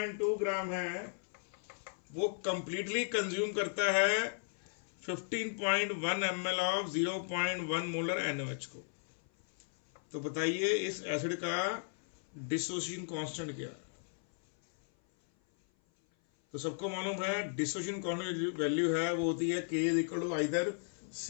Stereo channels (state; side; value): silent; right; 54 dB below the other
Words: ग्राम है वो कंप्लीटली कंज्यूम करता है 15.1 ml ऑफ 0.1 मोलर NaOH को। तो बताइए इस एसिड का डिसोसिएशन कांस्टेंट क्या है? तो सबको मालूम है डिसोसिएशन कांस्टेंट वैल्यू है वो होती है K is equal to either